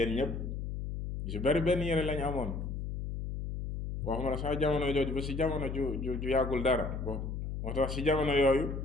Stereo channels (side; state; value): left; noise; hum, 4 dB below the sound